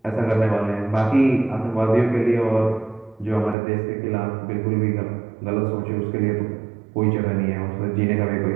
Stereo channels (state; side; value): drops out; left; at 3.6 s